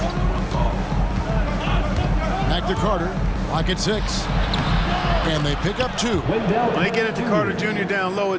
Back to Carter. Lock at 6. And they pick up 2. When they get it to Carter Jr. down low,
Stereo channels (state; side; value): identical; both; correlation 1.00